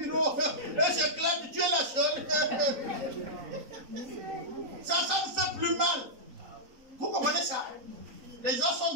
Et j'éclate, tu es la seule. Ça me fait plus mal. Vous comprenez ça? Les gens sont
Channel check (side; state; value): left; late; 3.9 ms